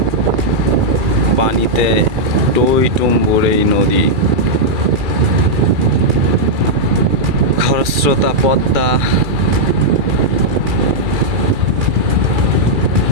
পানিতে, টইটুম্বুর এই নদী। খরস্রোতা পদ্মা,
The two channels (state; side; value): late; left; 2.4 ms